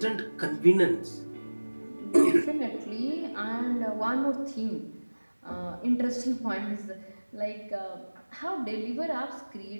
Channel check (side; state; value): both; inverted; correlation -1.00